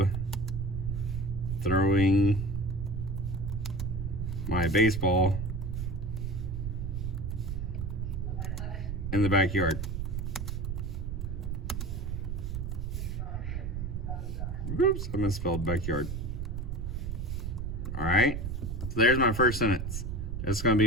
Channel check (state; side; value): noise; right; rumble, 4 dB below the sound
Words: throwing my baseball in the backyard. Oops, I misspelled backyard. All right, so there's my first sentence. That's gonna